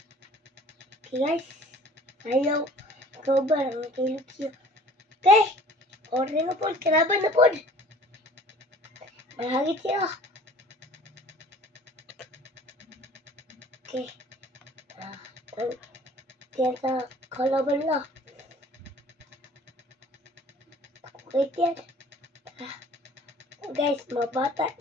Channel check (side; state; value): both; normal; correlation 0.49